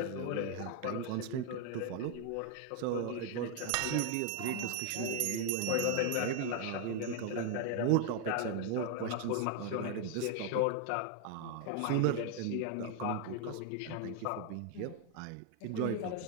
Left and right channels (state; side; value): different; both; correlation 0.01